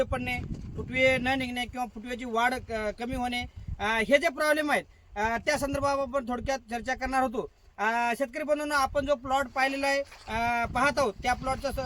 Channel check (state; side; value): identical; both; correlation 1.00